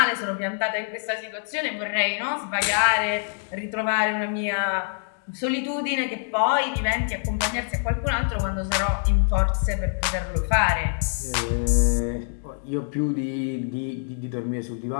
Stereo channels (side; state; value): right; silent; digital silence